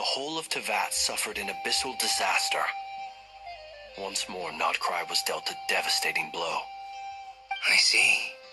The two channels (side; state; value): both; identical; correlation 1.00